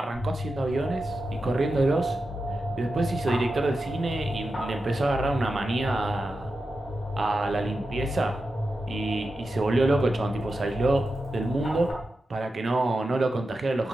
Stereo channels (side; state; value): both; normal; correlation 0.90